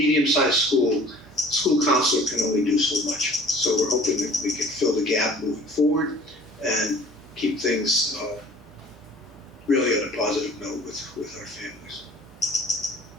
school counselor can only do so much. So we're hoping that we can fill the gap moving forward and keep things really on a positive note with our families.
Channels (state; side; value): normal; both; correlation 0.49